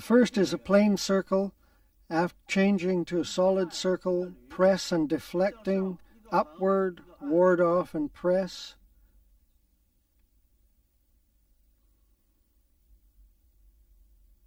first is a plain circle. After changing to a solid circle, press and deflecting, upward, ward off and press.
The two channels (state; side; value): identical; both; correlation 1.00